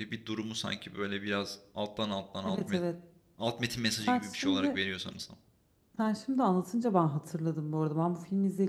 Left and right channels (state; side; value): identical; both; correlation 1.00